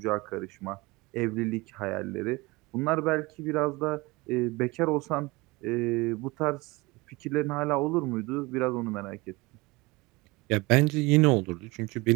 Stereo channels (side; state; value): left; quieter; 23.3 dB